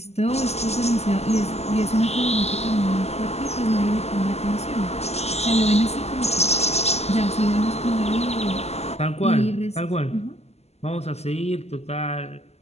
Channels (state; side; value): late; right; 0.30 ms